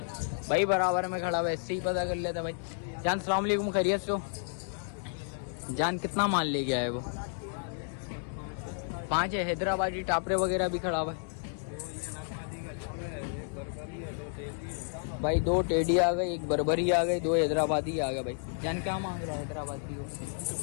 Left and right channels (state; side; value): silent; right; 57 dB below the other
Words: है। भाई बराबर में खड़ा हुआ, इससे ही पता कर लेता भाई। जान सलाम अलैकुम, खैरियत से हो जान? कितना माल ले गया है वो? 5 है। हैदराबादी टापरे वगैरह भी खड़ा हुआ है भाई। 2 टेडी आ गए, 1 बर्बरी आ गई, 2 हैदराबादी आ गए भाई। जान क्या मांग रहा है हैदराबादी को?